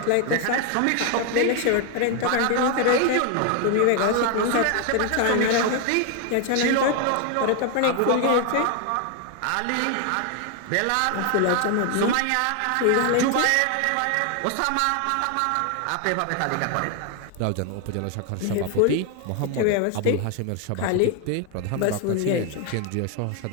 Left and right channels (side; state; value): both; different; correlation 0.01